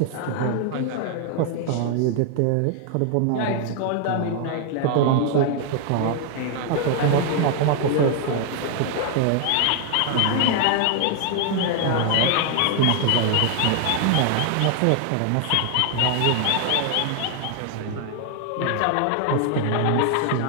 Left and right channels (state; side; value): different; both; correlation 0.00